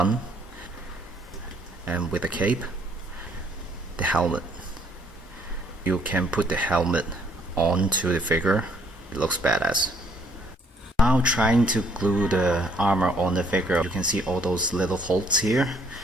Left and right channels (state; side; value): normal; both; correlation 0.65